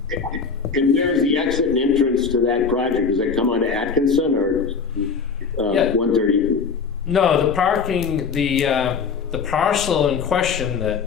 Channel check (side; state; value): right; quieter; 5.5 dB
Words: And where's the exit and entrance to that project? Does it come onto Atkinson or Yeah. 130? No, the parking, the parcel in question